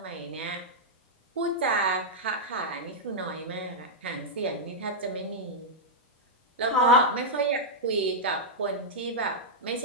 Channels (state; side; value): normal; both; correlation -0.07